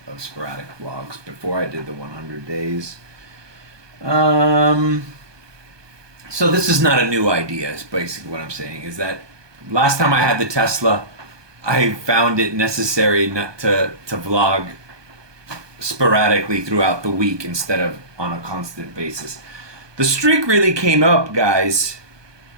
of sporadic vlogs before I did the 100 days. So this is not a new idea, is basically what I'm saying, is that last time I had the Tesla, I found it necessary not to vlog sporadically throughout the week instead of on a constant basis. The streak really came up, guys,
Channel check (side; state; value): left; late; 1.2 ms